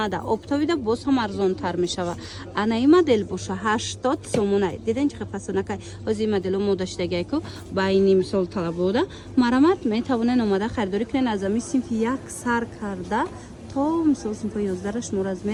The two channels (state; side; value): identical; both; correlation 1.00